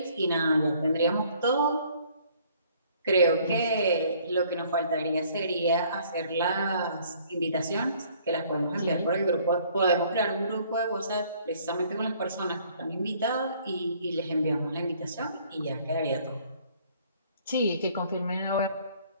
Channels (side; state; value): both; inverted; correlation -0.59